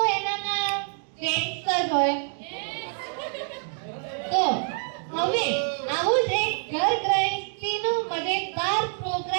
એનામાં જેન્ટ્સ જ હોય. તો હવે આવું જ એક ઘર ગૃહસ્થીનો મજેદાર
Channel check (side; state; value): left; silent; 61 dB below the other